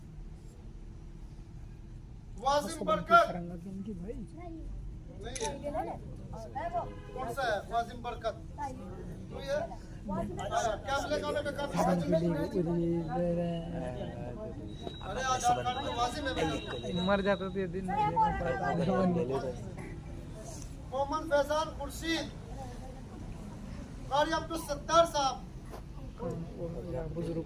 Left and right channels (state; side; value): identical; both; correlation 1.00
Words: वाजिम बरकत नहीं है, कौन सा है वाजिम बरकत? तो ये क्या मिलेगा उन्हें? अरे आधार कार्ड में वाजिम है मेरा। मर जाता तो ये दिन मोहम्मद फैजान खुर्शीद। कारी अब्दुल सत्तार साहब। बुजुर्ग